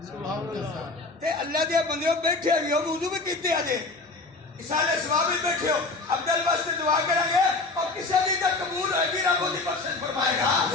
ते अल्लाह दे बंदे बैठे भी हो वुजू भी कीते अजे इसाले सवाब भी बैठे हो अब्दुल वास्ते दुआ करेंगे और किसी दी तक कबूल होगी रब ओदी बख्शिश फरमाएगा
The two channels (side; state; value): right; quieter; 3.5 dB